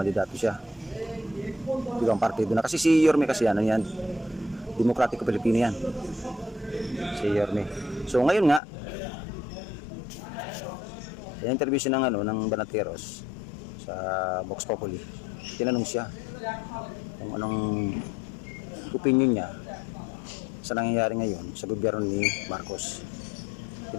siya ibang partido na, kasi si Yorme kasi yan, Demokratiko Pilipino yan, si Yorme. So ngayon nga, interview siya ng Banateros sa Vox Populi. Tinanong siya kung anong opinion niya sa nangyayari ngayon sa gobyerno ni Marcos.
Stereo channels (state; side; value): drops out; right; at 8.6 s